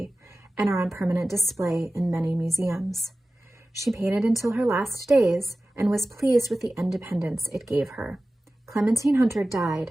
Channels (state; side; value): normal; both; correlation 0.96